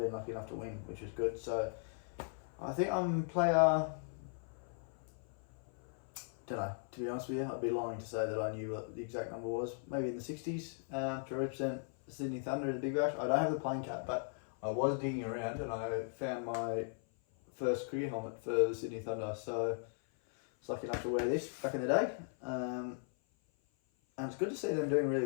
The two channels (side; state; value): right; silent; 53 dB below the other